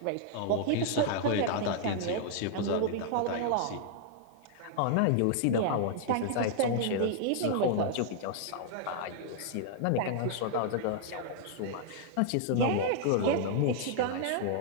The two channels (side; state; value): both; different; correlation -0.01